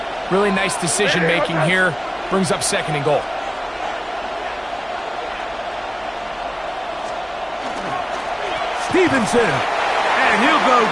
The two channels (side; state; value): both; identical; correlation 1.00